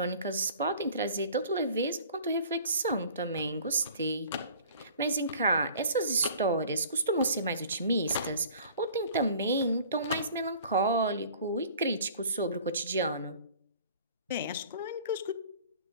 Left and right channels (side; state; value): both; inverted; correlation -0.48